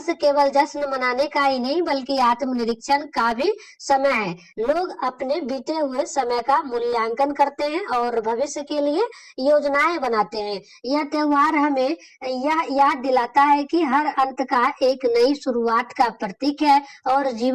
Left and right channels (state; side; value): identical; both; correlation 1.00